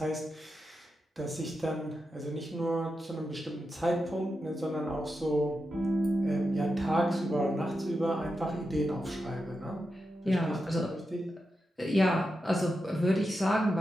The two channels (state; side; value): normal; both; correlation 0.88